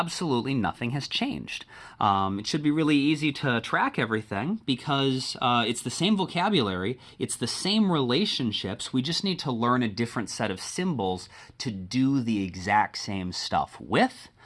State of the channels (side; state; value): both; identical; correlation 1.00